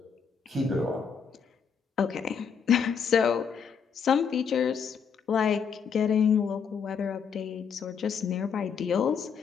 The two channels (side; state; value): right; quieter; 6.7 dB